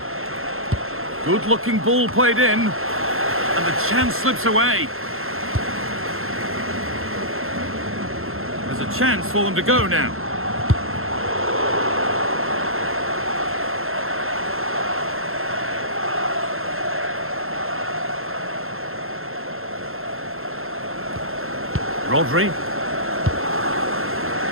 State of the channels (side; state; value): left; late; 0.61 ms